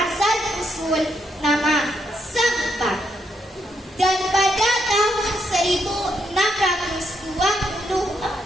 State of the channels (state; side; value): normal; both; correlation 0.78